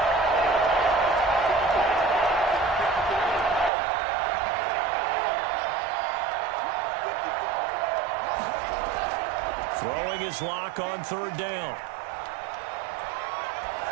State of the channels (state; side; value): drops out; left; at 3.7 s